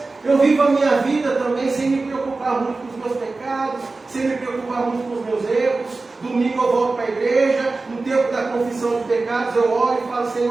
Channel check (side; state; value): left; quieter; 3.6 dB